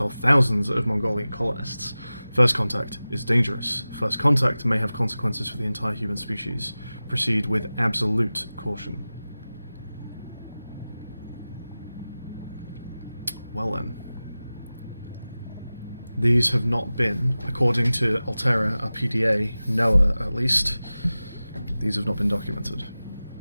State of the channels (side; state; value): both; inverted; correlation -0.97